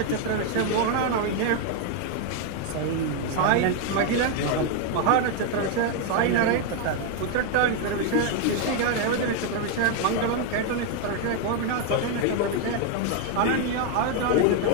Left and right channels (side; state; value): both; different; correlation 0.01